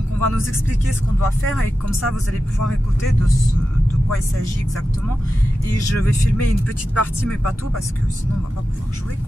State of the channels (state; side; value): normal; both; correlation 0.92